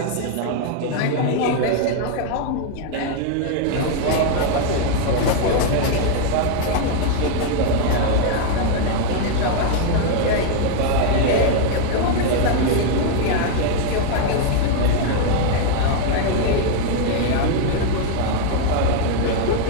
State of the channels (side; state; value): both; different; correlation 0.00